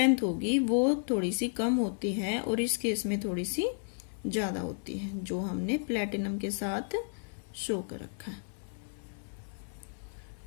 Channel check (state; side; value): silent; right; 56 dB below the other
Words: होगी वो थोड़ी सी कम होती है और इस केस में थोड़ी सी ज्यादा होती है, जो हमने प्लेटिनम के साथ शो कर रखा है।